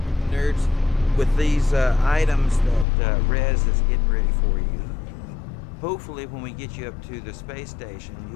nerds, with these items that Rez is getting ready for you. Hopefully, when we get you up to the space station,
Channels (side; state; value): right; drops out; at 2.9 s